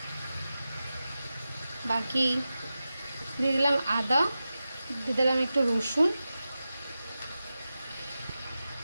বাকি দিয়ে দিলাম আদা, দিয়ে দিলাম একটু রসুন,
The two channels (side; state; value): both; inverted; correlation -0.93